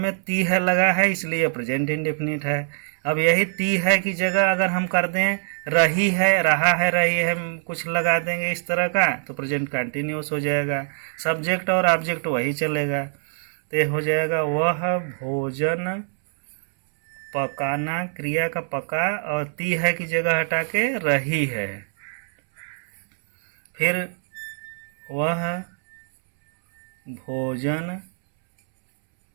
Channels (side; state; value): left; silent; 63 dB below the other